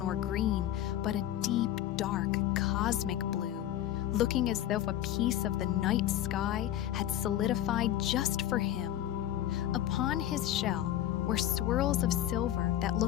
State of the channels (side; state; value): right; quieter; 12.2 dB